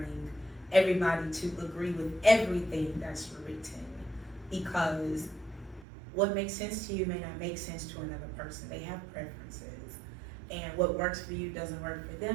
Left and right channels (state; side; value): drops out; left; at 5.9 s